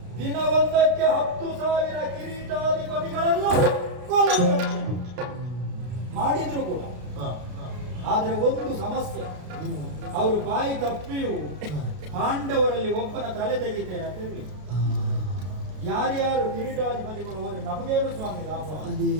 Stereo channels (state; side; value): late; left; 33 ms